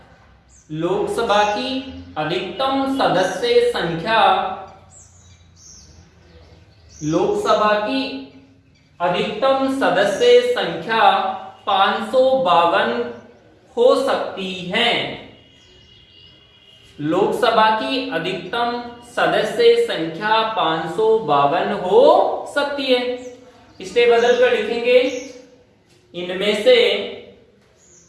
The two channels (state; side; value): identical; both; correlation 1.00